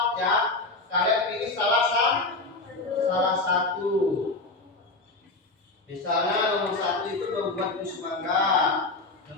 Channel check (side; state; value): right; quieter; 3.3 dB